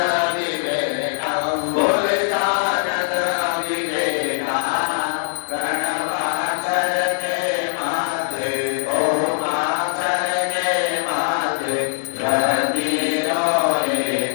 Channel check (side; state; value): right; silent; digital silence